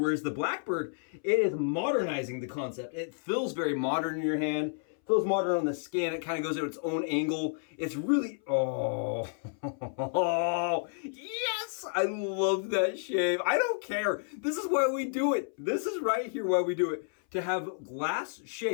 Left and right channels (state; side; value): silent; right; 57 dB below the other